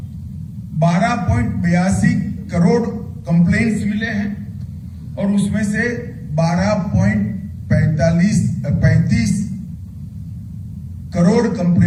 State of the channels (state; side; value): identical; both; correlation 1.00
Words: 12.82 करोड़ कंप्लेंट्स मिले हैं और उसमें से 12.35 करोड़